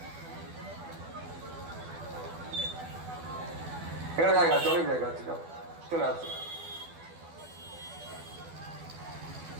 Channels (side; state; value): left; late; 12 ms